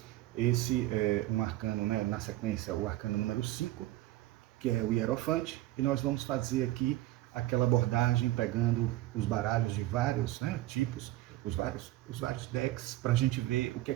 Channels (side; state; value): left; quieter; 16.0 dB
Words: Esse é um arcano, né, na sequência, o arcano número 5, que é o Hierofante, e nós vamos fazer aqui aquela abordagem pegando os baralhos de vários, né, tipos, os vários decks, para a gente ver o que é